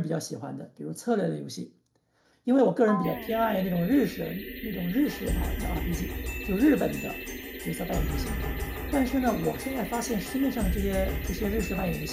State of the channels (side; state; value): both; identical; correlation 1.00